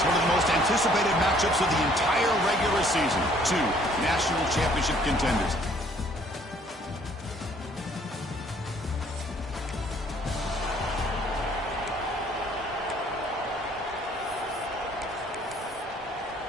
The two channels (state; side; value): normal; both; correlation 0.60